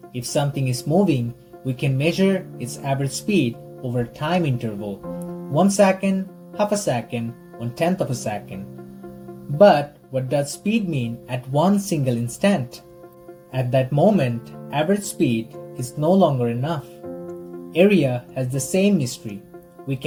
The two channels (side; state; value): both; identical; correlation 1.00